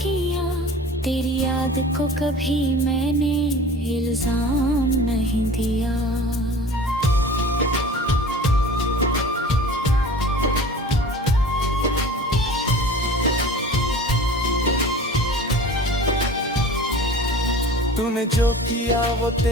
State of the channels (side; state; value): both; normal; correlation 0.41